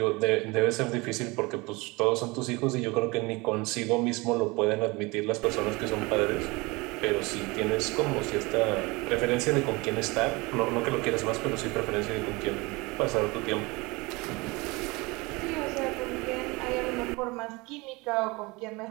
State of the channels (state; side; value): quieter; left; 24.5 dB